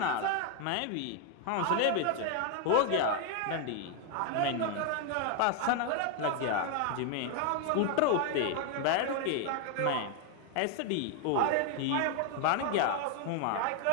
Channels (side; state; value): both; different; correlation 0.00